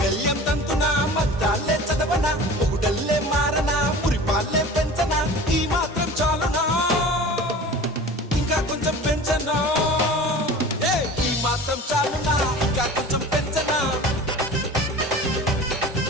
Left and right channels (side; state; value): both; normal; correlation 0.39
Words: తంతునా మద్దాలే చదవనా పొగుడల్లే మారనా మురిపాలే పెంచనా ఈ మాత్రం చాలునా ఇంకా కొంచెం పెంచనా ఈ మాత్రం చాలునా ఇంకా కొంచెం పెంచనా